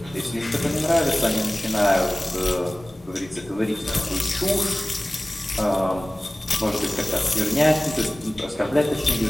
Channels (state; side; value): normal; both; correlation 0.98